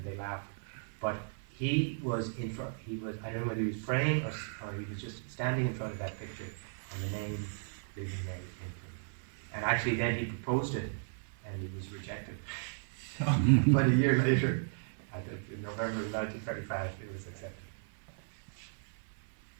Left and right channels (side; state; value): left; silent; 54 dB below the other